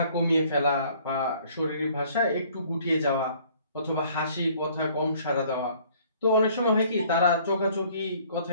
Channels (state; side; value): inverted; both; correlation -0.57